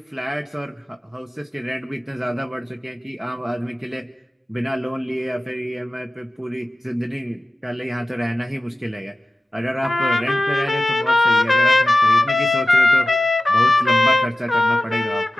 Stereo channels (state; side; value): normal; both; correlation 0.95